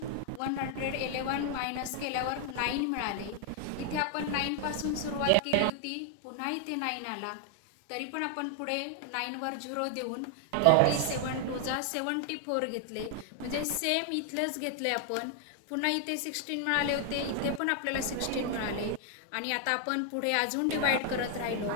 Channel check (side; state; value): both; different; correlation 0.00